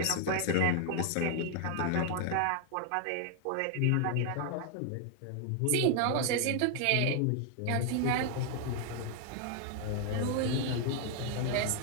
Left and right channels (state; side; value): different; both; correlation 0.00